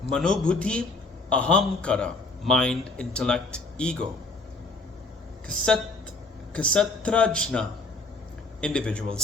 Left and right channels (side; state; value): right; quieter; 3.5 dB